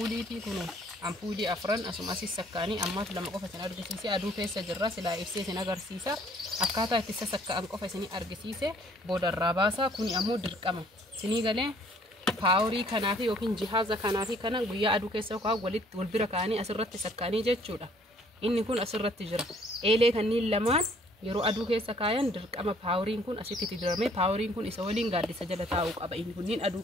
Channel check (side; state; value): both; normal; correlation 0.60